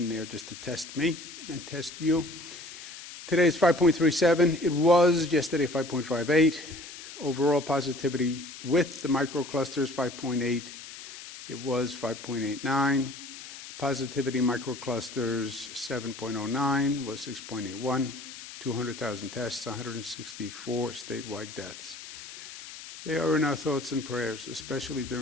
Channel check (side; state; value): left; noise; hiss, 13 dB below the sound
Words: there just to test me and test you. Today is 5.37. It was yesterday 5.58. Overall positivity with the microclusters 5.8. It was 5.89. Positivity microclusters 7.09 was 6.81. 200,000 tests, 164 statewide deaths. They are in our thoughts and prayers, especially